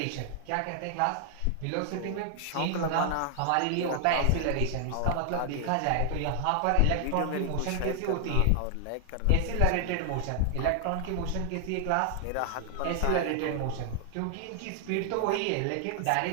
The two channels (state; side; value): different; both; correlation 0.00